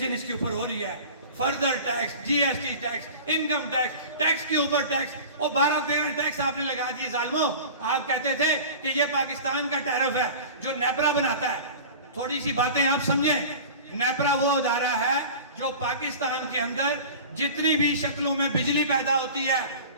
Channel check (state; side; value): inverted; both; correlation -0.37